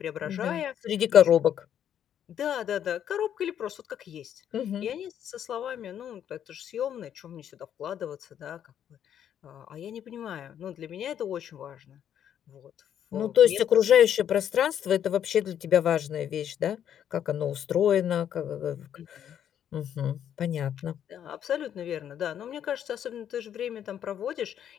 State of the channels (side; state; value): right; quieter; 9.6 dB